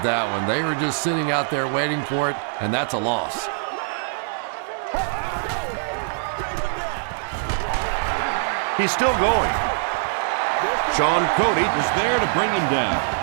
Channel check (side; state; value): left; silent; digital silence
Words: that one. They were just sitting out there waiting for it, and that's a loss. He's still going. Sean Cody is there to bring him down.